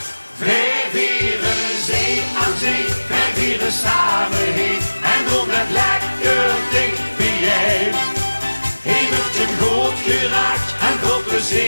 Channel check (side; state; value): both; inverted; correlation -1.00